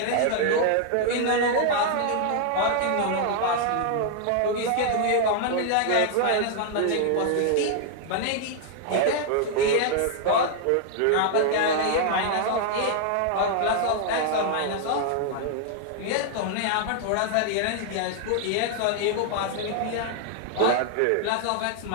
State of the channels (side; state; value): both; different; correlation 0.00